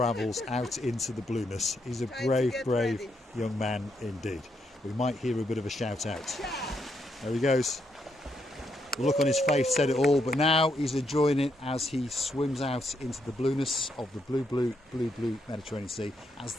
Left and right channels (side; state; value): both; normal; correlation 0.78